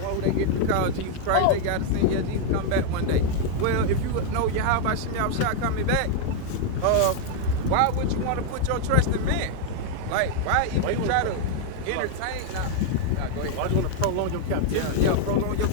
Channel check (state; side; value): different; both; correlation 0.00